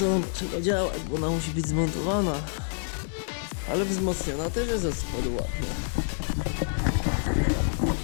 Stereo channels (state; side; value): silent; right; digital silence